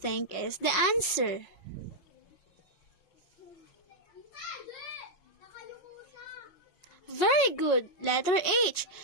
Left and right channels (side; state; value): right; late; 5.5 ms